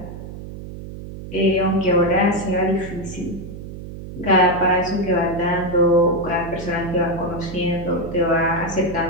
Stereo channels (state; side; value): noise; right; hum, 11 dB below the sound